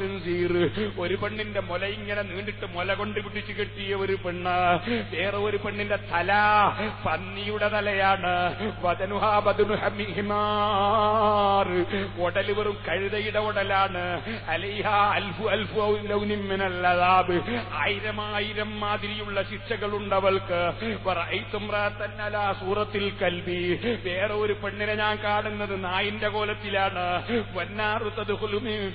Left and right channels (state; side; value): identical; both; correlation 1.00